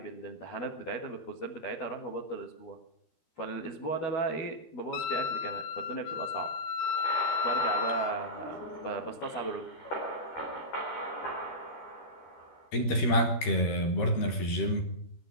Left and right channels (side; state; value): right; late; 13 ms